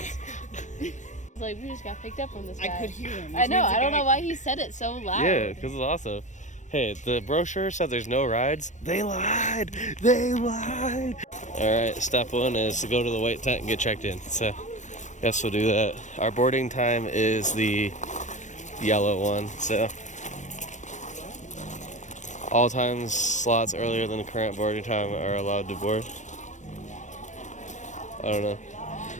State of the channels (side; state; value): right; late; 0.35 ms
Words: Like, we just got picked up from this guy. I could hear him. I know. I don't know why he said it so loud. Yeah, because it's awesome. Hey, the brochure said there's no rides. They lied. They lied. All right, step one is to go to the white tent and get checked in. So, guess we'll do that. Our boarding time is the yellow one. So, all times slots earlier than the current boarding time are allowed to board. I don't know.